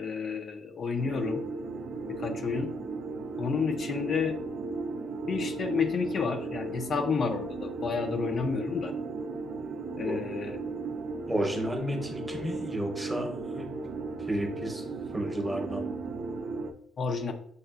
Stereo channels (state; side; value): normal; both; correlation 0.74